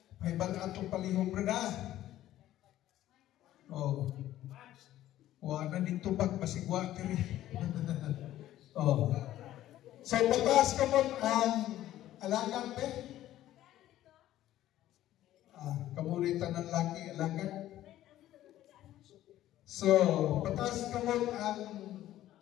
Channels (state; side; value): quieter; right; 13.6 dB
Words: may baga itong palihog, Brad, ha? Oh. Wala dito bag, masigwa, tiri. Oh. So, pataas ka mo ang alagan, pe? Kamuritan ng laki, alagan. So, pataas ka mo ang